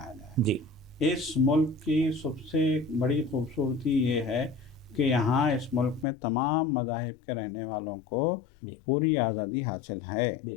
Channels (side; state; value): right; drops out; at 6.1 s